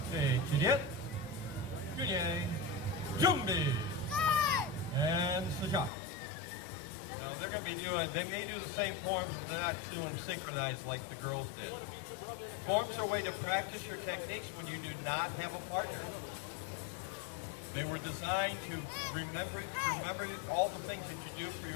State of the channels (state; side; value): drops out; right; at 5.9 s